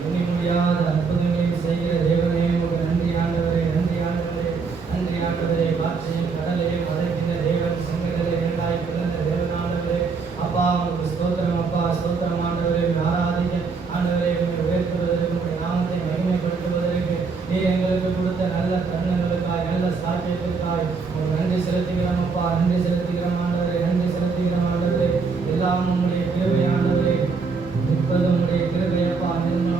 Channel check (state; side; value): quieter; left; 4.9 dB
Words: துணி முடியாத அற்புதங்களையும் செய்கிற தேவனே உங்களுக்கு நன்றி ஆண்டவரே, நன்றி ஆண்டவரே, நன்றி ஆண்டவரே. காற்றையும் கடலையும் அதற்கின்ற தேவன் செங்கடலை இரண்டாய் பிளந்த தேவனாண்டவரே அப்பா, உங்களுக்கு ஸ்தோத்திரம் அப்பா, ஸ்தோத்திரம் ஆண்டவரே. ஆராதிக்க ஆண்டவரே, உயர்த்துவதற்கு உங்களுடைய நாமத்தை மகிமைப்படுத்துவதற்கு நீ எங்களுக்கு கொடுத்த நல்ல தருணங்களுக்காய் நல்ல சாட்சியத்திற்காய் உங்களுக்கு நன்றி செலுத்துகிறோம் அப்பா, நன்றி செலுத்துகிறோம் ஆண்டவரே, நன்றி செலுத்துகிறோம் ஆண்டவரே. எல்லாம் உங்களுடைய கிருபை ஆண்டவரே, நிற்பது உங்களுடைய கிருபையப்பா,